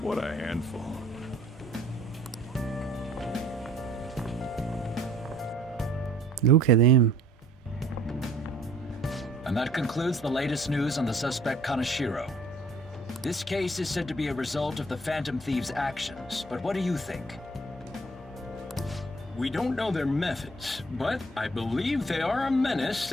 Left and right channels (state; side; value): normal; both; correlation 0.57